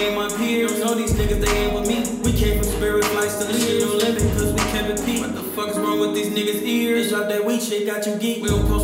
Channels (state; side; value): identical; both; correlation 1.00